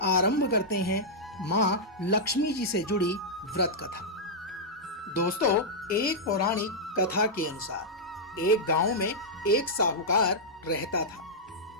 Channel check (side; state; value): both; normal; correlation -0.08